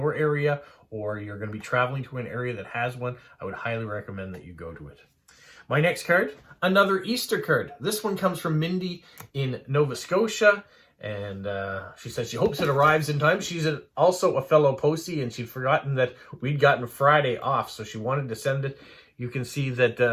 area, or you're going to be traveling to an area that has one, I would highly recommend that you go to it. My next card, another Easter card. This one comes from Mindy in Nova Scotia. And she says she hopes it arrives in time. She's also a fellow postie, and she'd forgotten that we'd gotten Friday off, so she wanted to send it. You can see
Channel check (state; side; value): identical; both; correlation 1.00